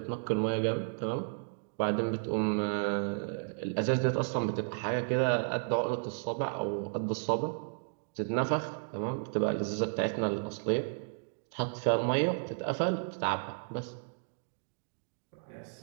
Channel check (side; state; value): left; silent; digital silence